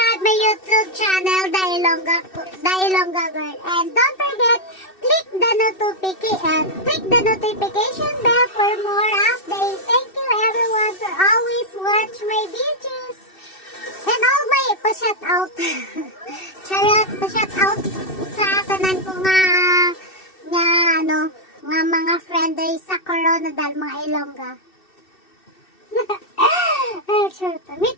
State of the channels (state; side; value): late; right; 2.6 ms